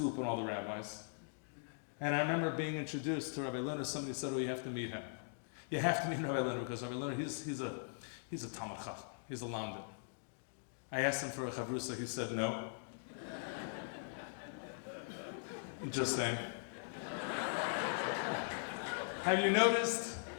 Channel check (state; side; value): silent; right; digital silence